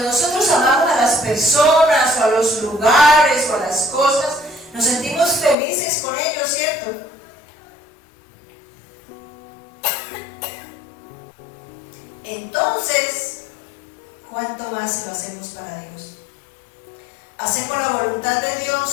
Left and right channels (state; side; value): drops out; right; at 5.6 s